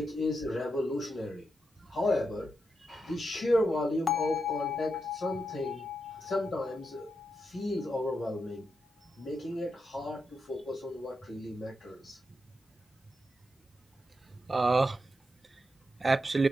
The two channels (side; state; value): both; normal; correlation 0.85